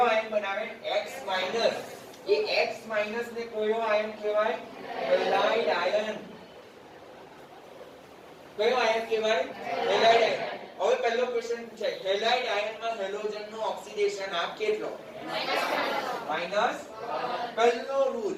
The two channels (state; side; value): identical; both; correlation 1.00